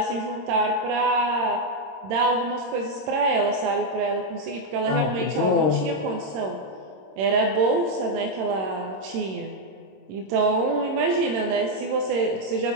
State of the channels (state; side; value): late; left; 26 ms